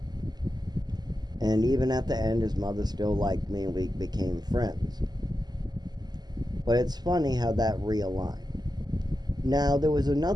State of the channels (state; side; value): late; left; 0.20 ms